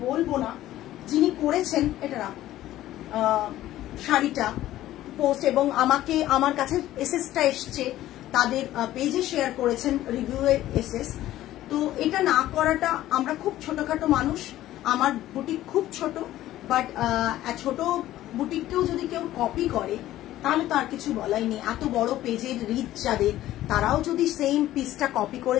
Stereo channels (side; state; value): right; quieter; 14.3 dB